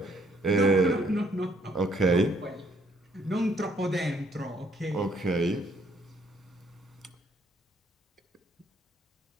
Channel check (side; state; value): both; normal; correlation 0.68